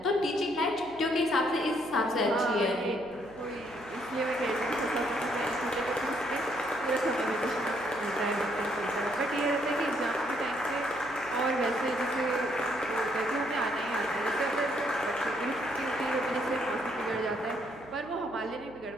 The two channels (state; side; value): noise; right; hum, 21 dB below the sound